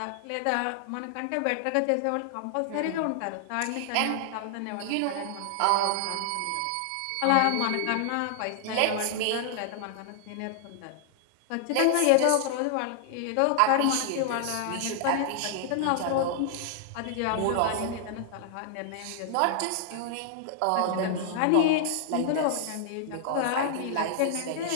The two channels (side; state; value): both; different; correlation -0.01